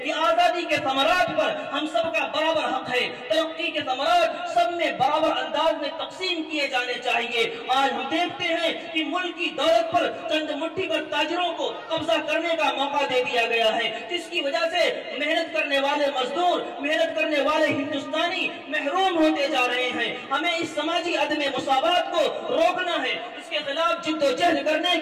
کہ آزادی کے ثمرات پر ہم سب کا برابر حق ہے، ترقی کے ثمرات سب میں برابر انداز میں تقسیم کیے جانے چاہیے۔ آج ہم دیکھتے ہیں کہ ملک کی دولت پر چند مٹھی پر تاجروں کو قبضہ کرنے کا موقع دے دیا گیا ہے، جس کی وجہ سے محنت کرنے والے مزدور، محنت کرنے والے ہندوستانی محروم ہوتے جا رہے ہیں۔ ہمیں اس سماجی عدم مساوات کو روکنا ہے، اس کے خلاف جد و جہد کرنے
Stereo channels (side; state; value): both; identical; correlation 1.00